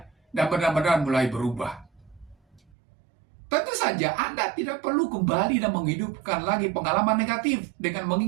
dan benar-benar mulai berubah. Tentu saja Anda tidak perlu kembali dan menghidupkan lagi pengalaman negatif dengan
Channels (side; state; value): left; drops out; at 2.7 s